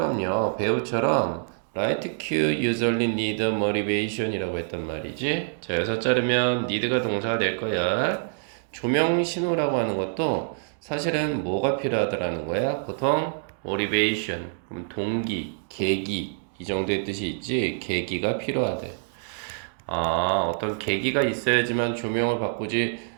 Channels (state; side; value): silent; left; digital silence